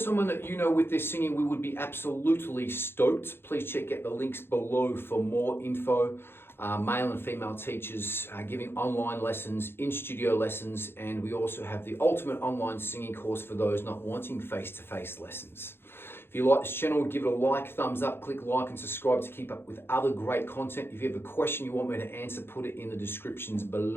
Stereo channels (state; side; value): late; right; 0.11 ms